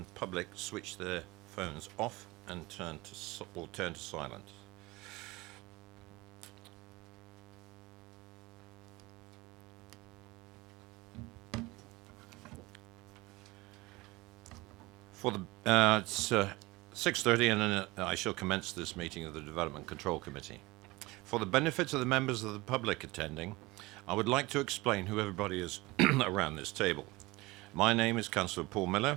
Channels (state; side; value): quieter; left; 21.8 dB